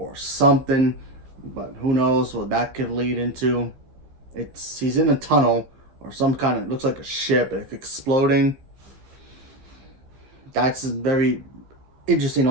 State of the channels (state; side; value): late; left; 15 ms